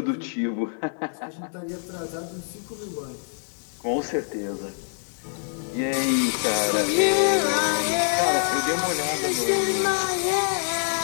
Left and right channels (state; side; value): silent; right; 61 dB below the other